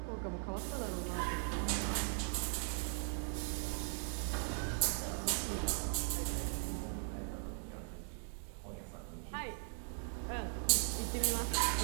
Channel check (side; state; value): left; silent; 52 dB below the other